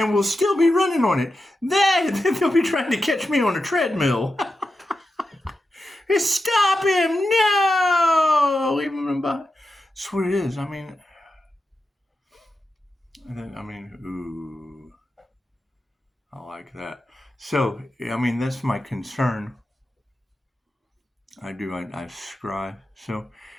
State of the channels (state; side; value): normal; both; correlation 0.89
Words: will still be running on it? They'll be trying to catch me on a treadmill. Stop him! No! Leave him behind. That's what it is. I mean, ooh, I like that. So, I mean, that's my concern. I scry. So,